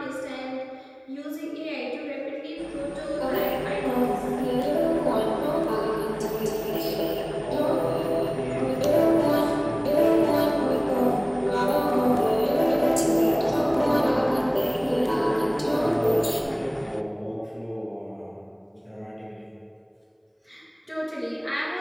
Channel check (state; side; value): identical; both; correlation 1.00